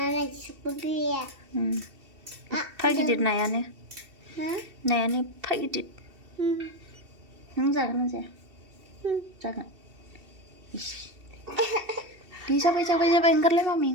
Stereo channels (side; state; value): left; late; 2.7 ms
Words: Pagidir nayane Nayane pagidir Nung jagan na zaya Jagan Jabai enggar lay